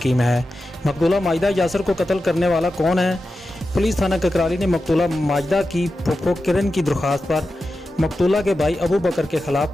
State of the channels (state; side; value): normal; both; correlation 0.91